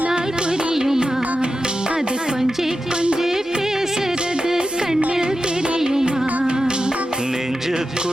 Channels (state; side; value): normal; both; correlation 0.91